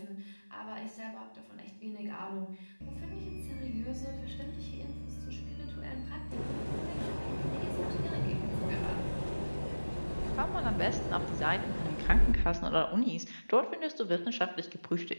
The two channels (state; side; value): inverted; both; correlation -1.00